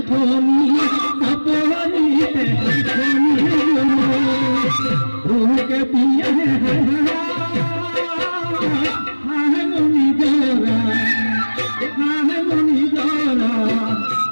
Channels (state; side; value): inverted; both; correlation -1.00